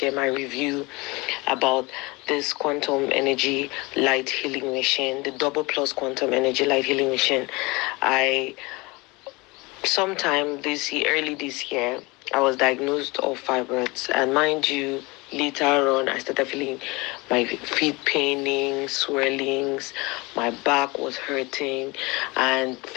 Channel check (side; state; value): right; quieter; 24.6 dB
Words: my review about this quantum energy light healing machine, the double plus quantum energy light healing machine. I Sometime early this year, I was diagnosed of fibroids, and mind you, later on, I started feeling my feet paining, swellings, my back was hurting, and